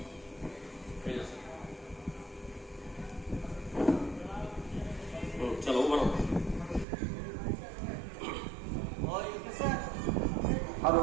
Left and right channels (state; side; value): drops out; left; at 6.9 s